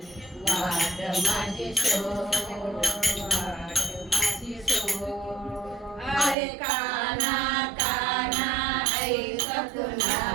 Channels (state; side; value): drops out; left; at 6.4 s